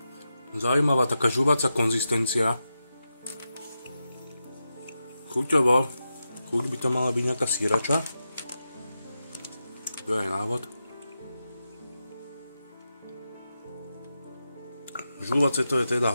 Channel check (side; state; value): both; inverted; correlation -0.89